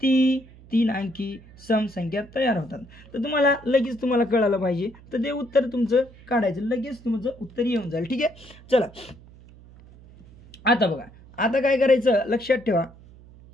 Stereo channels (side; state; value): right; noise; hum, 22 dB below the sound